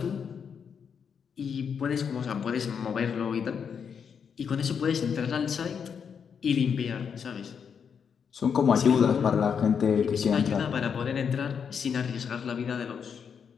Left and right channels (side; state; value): right; quieter; 6.9 dB